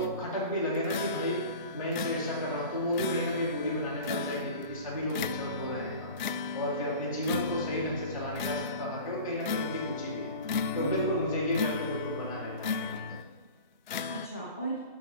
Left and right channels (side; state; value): both; inverted; correlation -0.38